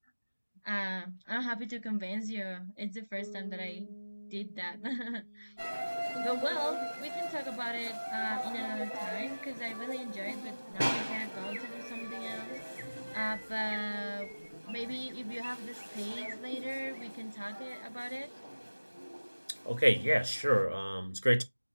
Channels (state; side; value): inverted; both; correlation -1.00